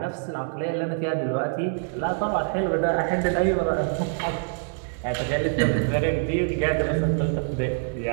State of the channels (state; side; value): silent; left; digital silence